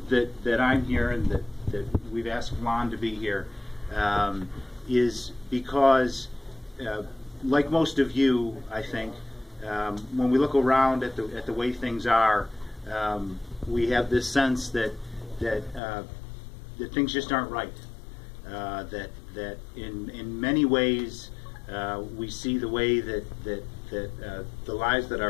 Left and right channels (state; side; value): drops out; right; at 15.8 s